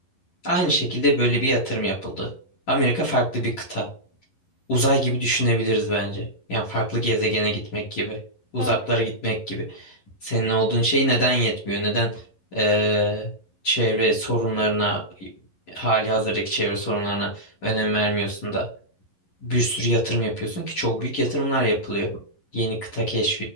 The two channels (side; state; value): right; late; 11 ms